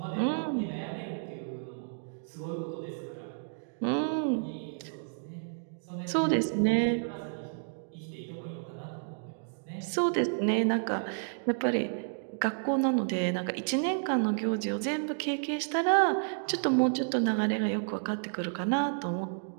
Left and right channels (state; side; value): silent; left; digital silence